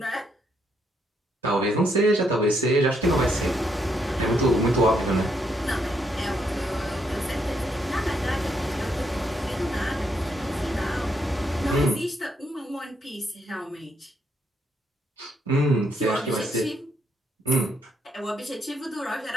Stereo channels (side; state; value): both; normal; correlation 0.76